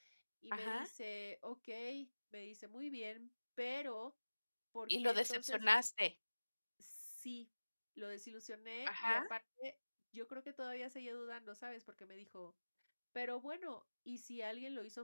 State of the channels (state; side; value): inverted; both; correlation -1.00